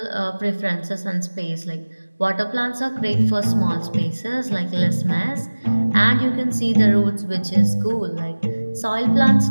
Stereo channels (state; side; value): inverted; both; correlation -1.00